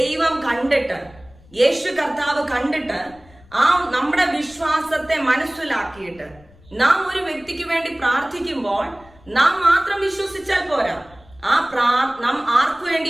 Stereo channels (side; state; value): left; noise; rumble, 26 dB below the sound